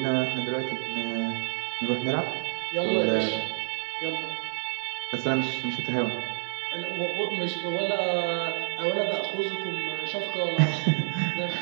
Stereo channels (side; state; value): left; silent; digital silence